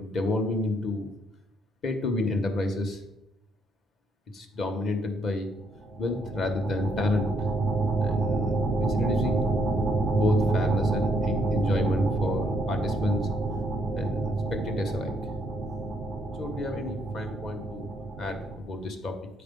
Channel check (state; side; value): normal; both; correlation 0.71